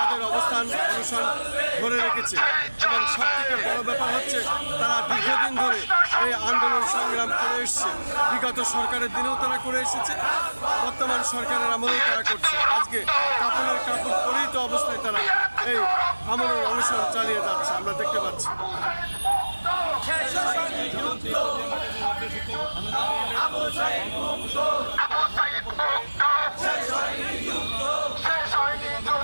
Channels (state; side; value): inverted; both; correlation -1.00